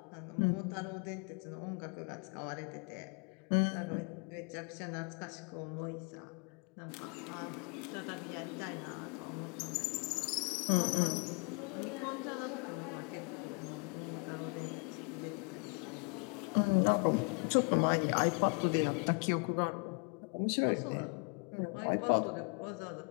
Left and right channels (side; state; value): right; quieter; 36.0 dB